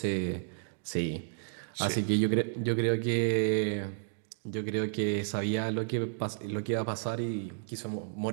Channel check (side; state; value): left; silent; digital silence